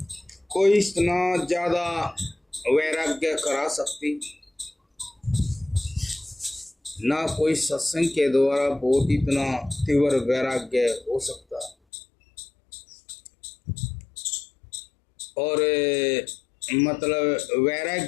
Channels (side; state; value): right; drops out; at 11.8 s